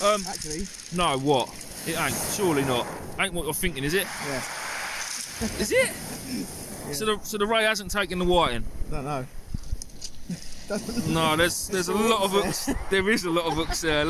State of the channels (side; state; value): both; identical; correlation 1.00